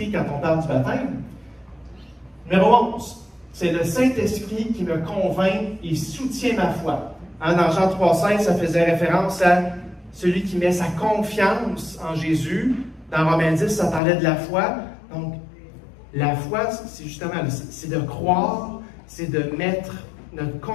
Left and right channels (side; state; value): right; drops out; at 14.0 s